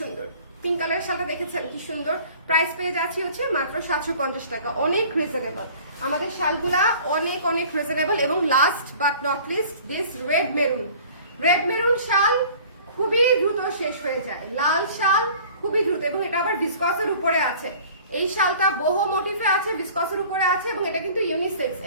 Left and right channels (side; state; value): both; inverted; correlation -0.48